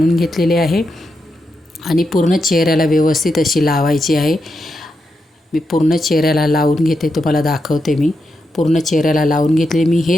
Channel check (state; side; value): normal; both; correlation 0.85